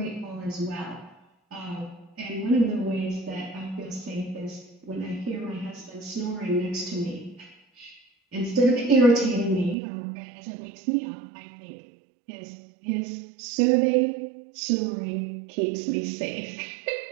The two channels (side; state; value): left; drops out; at 9.8 s